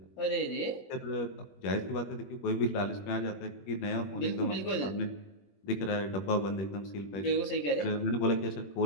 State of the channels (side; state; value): right; late; 21 ms